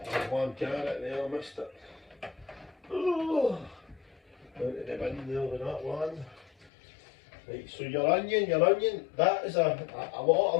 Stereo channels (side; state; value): right; drops out; at 6.7 s